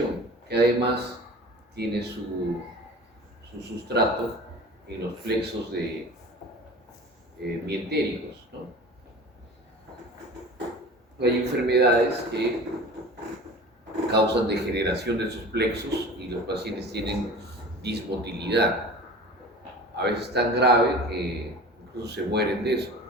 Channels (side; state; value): both; normal; correlation 0.39